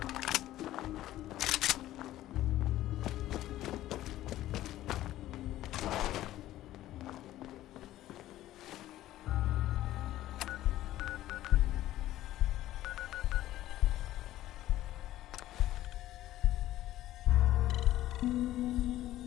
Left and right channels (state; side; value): quieter; right; 14.4 dB